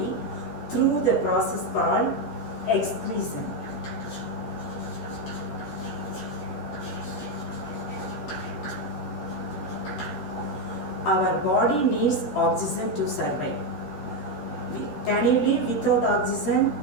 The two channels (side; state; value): right; late; 14 ms